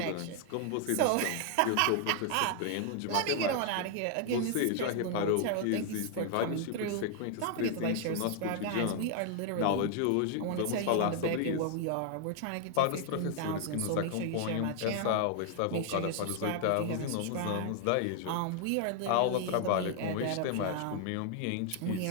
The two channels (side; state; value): both; different; correlation 0.00